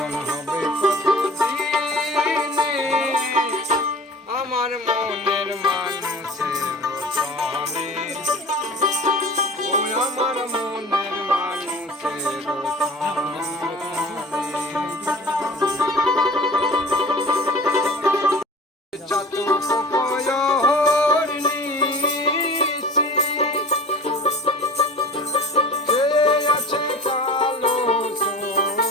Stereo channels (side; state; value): both; normal; correlation 0.40